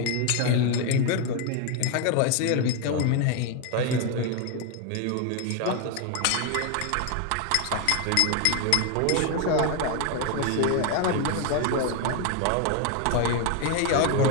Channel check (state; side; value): different; both; correlation 0.01